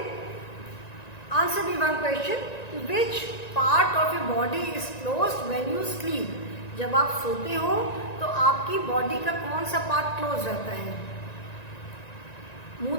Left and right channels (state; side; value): late; right; 1.9 ms